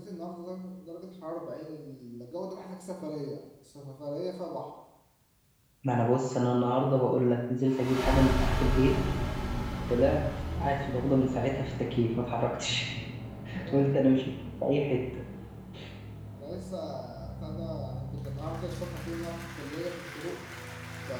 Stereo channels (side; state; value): both; identical; correlation 1.00